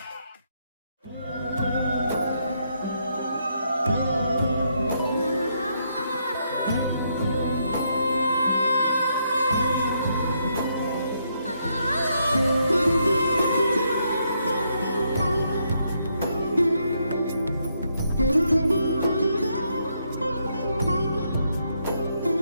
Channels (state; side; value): inverted; both; correlation -0.77